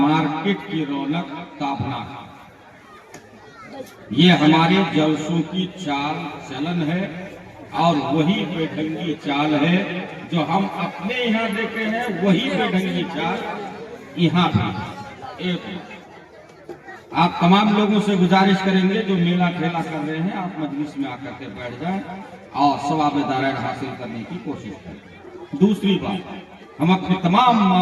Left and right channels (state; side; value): identical; both; correlation 1.00